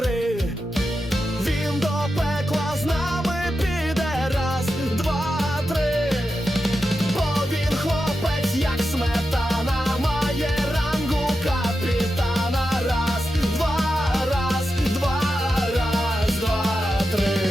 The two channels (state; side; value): normal; both; correlation 0.90